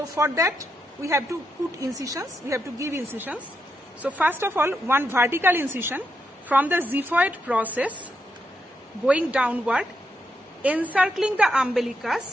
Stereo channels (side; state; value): both; normal; correlation 0.82